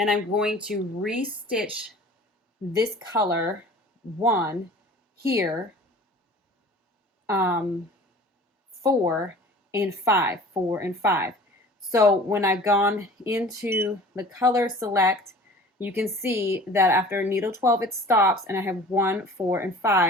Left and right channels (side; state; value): both; normal; correlation 0.44